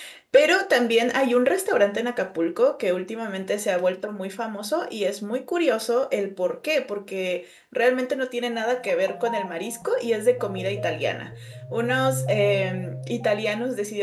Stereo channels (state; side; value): identical; both; correlation 1.00